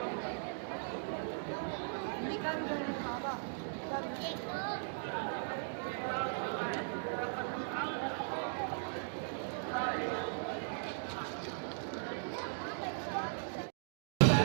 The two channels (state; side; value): silent; left; digital silence